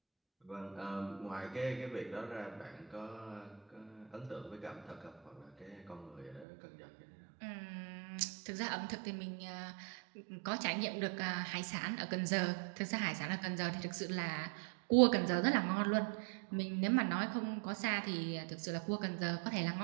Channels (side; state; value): left; drops out; at 6.5 s